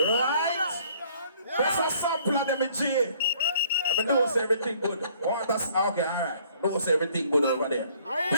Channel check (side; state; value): both; inverted; correlation -0.60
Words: That's a sample of them in G. I mean, knows everything good. Okay, alright. Knows everything good over there.